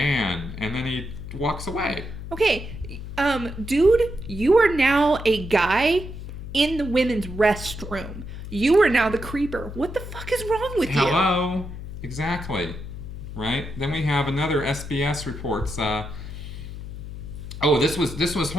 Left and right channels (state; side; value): noise; left; hum, 10 dB below the sound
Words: And then he walks away. Okay, dude, you are now a guy in the women's restroom. You are now the creeper. What the fuck is wrong with you? Hello. Exactly. Right? Then we have another SBS reports... this was